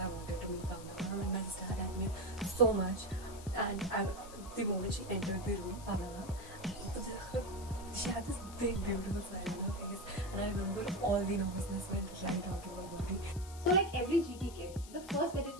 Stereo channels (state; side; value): noise; left; hiss, 17 dB below the sound